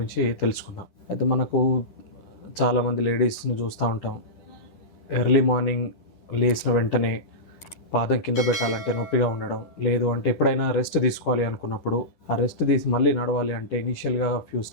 తెలుసుకుందాం. అయితే మనకు చాలామంది లేడీస్ని చూస్తూ ఉంటాం. ఎర్లీ మార్నింగ్ లేచిన వెంటనే పాదం కింద పెట్టాలంటే నొప్పిగా ఉండడం, లేదు అంటే ఎప్పుడైనా రెస్ట్ తీసుకోవాలి అనుకున్నప్పుడు ఆ రెస్ట్ తీసి మళ్ళీ నడవాలి అంటే ఇనీషియల్గా ఫ్యూ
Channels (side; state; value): right; late; 10 ms